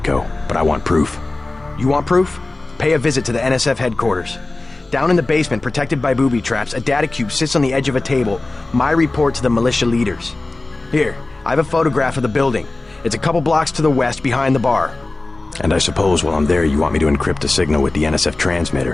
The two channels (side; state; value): right; quieter; 3.1 dB